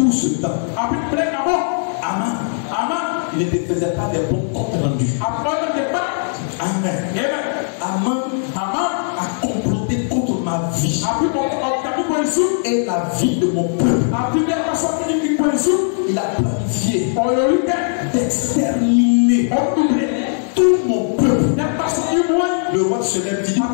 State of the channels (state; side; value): silent; right; 60 dB below the other